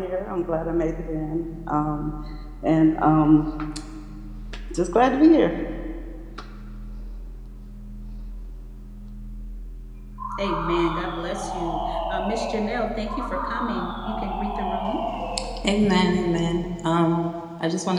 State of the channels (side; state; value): both; identical; correlation 1.00